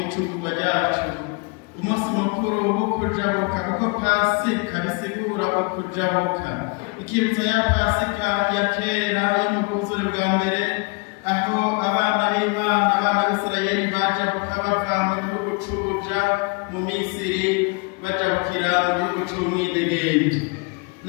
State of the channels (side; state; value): right; quieter; 30.6 dB